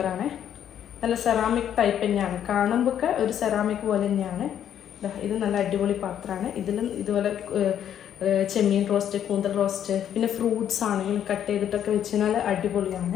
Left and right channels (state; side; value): quieter; right; 9.8 dB